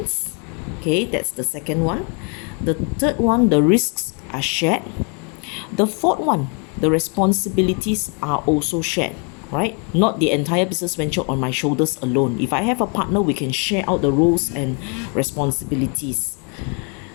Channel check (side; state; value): right; quieter; 36.4 dB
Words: Okay, that's the second one. The third one, the risks are shared. The fourth one, the responsibilities are also shared, right? Not the entire business venture on my shoulders alone. If I have a partner, we can share out the roles and responsibilities.